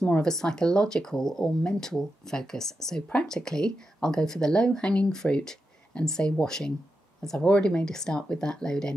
more of a psychological or mental focus. So practically, I'll go for the low-hanging fruit and say washing, as I've already made a start with that load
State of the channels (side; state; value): both; normal; correlation 0.88